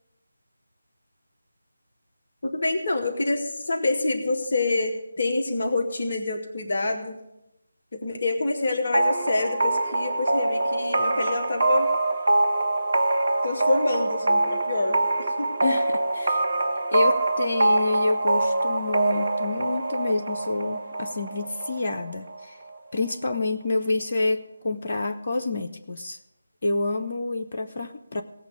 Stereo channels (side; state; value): both; inverted; correlation -0.89